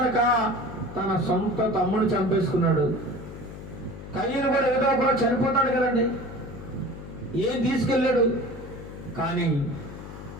తన సొంత తమ్ముడు చంపేసుకున్నాడు. కయీను కూడా ఏదో ఒక రోజు చనిపోతాడు కదండి. ఏం తీసుకెళ్ళాడు? కానీ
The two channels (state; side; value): noise; left; hum, 12 dB below the sound